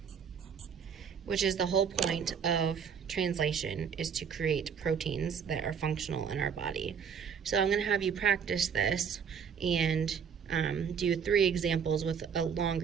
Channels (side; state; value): left; quieter; 7.0 dB